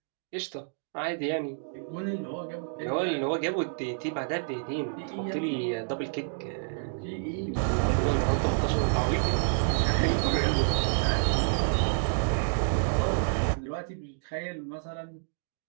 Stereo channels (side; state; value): left; silent; digital silence